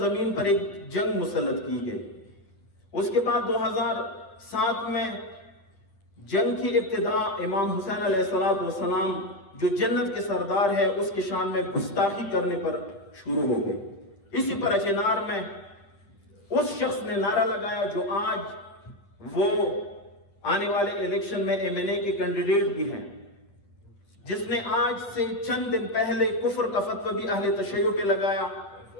پر ایک جنگ مسلط کی گئی. اس کے بعد 2007 میں جنگ کی ابتدا امام حسین علیہ السلام جو جنت کے سردار ہے اس کی شان میں گستاخی کرنے پر شروع ہو گئی. اسی پر اچینار میں اس شخص نے نعرہ لگایا جو آج وہ آنے والے الیکشن میں MNA کے کینڈیڈیٹ بھی ہیں، جس نے آج سے چند دن پہلے کفر کا فتویٰ بھی اہل تشیع پہ لگایا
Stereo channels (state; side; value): late; right; 10 ms